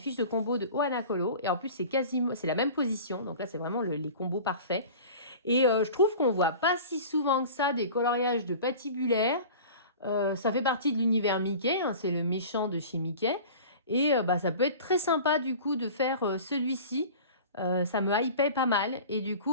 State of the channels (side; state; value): both; inverted; correlation -0.39